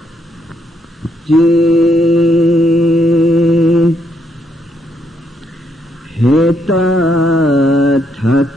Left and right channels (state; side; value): normal; both; correlation 0.75